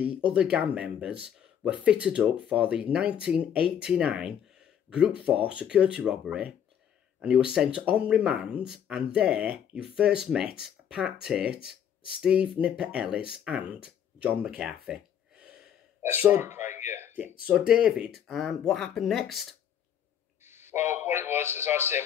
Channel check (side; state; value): right; quieter; 9.0 dB